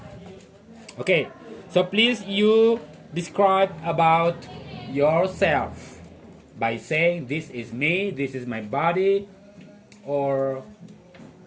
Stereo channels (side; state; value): both; identical; correlation 1.00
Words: Okay. So please you describe about yourself by saying this is me, this is my body, or